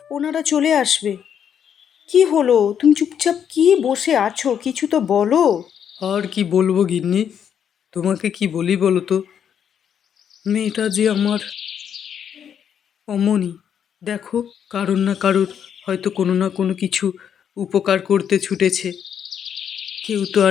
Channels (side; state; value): right; quieter; 8.5 dB